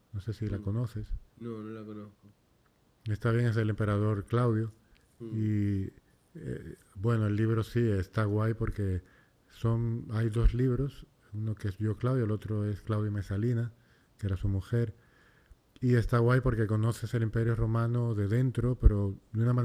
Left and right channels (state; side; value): identical; both; correlation 1.00